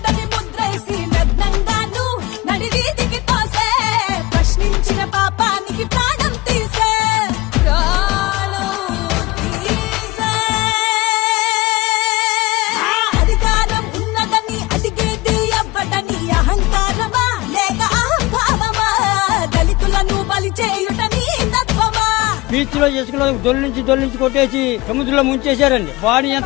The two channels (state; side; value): quieter; right; 21.3 dB